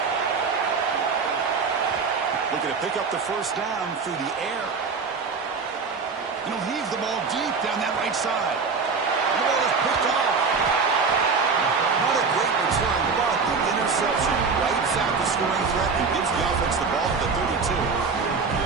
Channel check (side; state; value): left; quieter; 5.0 dB